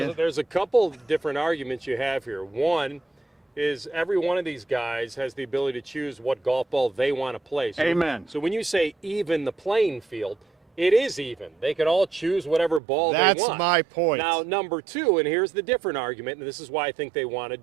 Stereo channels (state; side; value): drops out; left; at 12.8 s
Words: Well, there's a couple different arguments you have here. One is every one of these guys has the ability to choose what golf ball they want to play. So, Amen. So when you say even the playing field, it is even. They can all choose whatever ball they want. That's my point. Now, number two, and here's the different argument, and this is why I think they want to